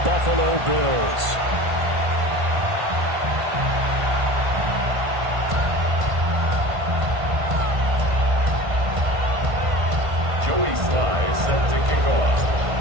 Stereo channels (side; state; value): left; late; 1.5 ms